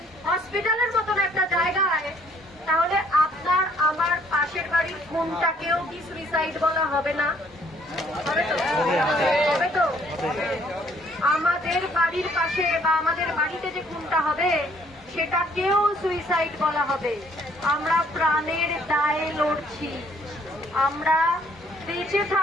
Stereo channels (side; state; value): both; normal; correlation 0.63